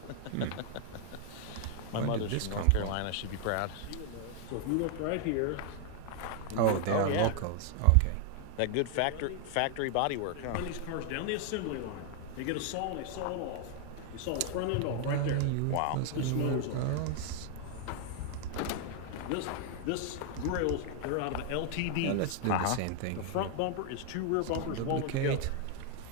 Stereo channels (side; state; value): both; different; correlation 0.00